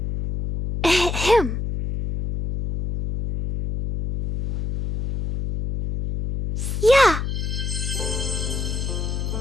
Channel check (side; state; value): left; noise; hum, 3 dB below the sound